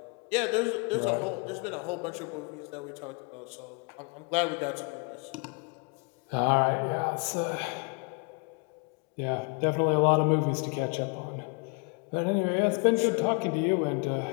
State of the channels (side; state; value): right; quieter; 33.5 dB